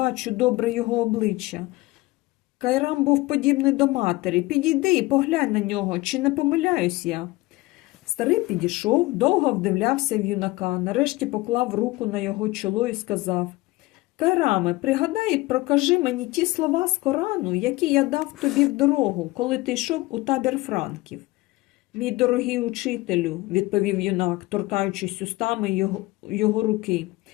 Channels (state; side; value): quieter; right; 20.5 dB